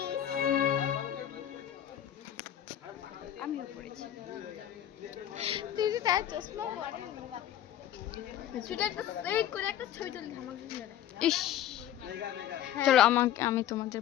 আমিও পরেছি। তুই যে তার চশমা পরে সেটা একটা এই করে একটা ছবি তুলি আমাকে দিলে। ইস চলো আমি তোমাদের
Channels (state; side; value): quieter; right; 11.2 dB